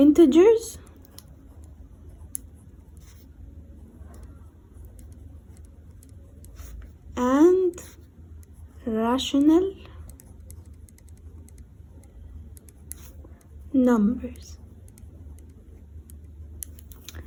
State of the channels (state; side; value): identical; both; correlation 1.00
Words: and rational numbers.